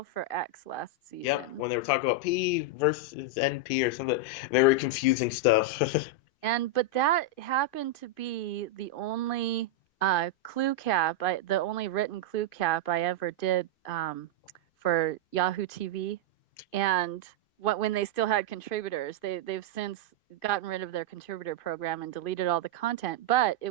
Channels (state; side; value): late; right; 2.5 ms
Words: for X last Yep, season. when they were talking about P versus NP or something, very confusing stuff. But that happened to be the only the only written clue cap I ever did for Yahoo TV. And when they still had contributors, they've since gotten rid of their contributor program and deleted all the content, but it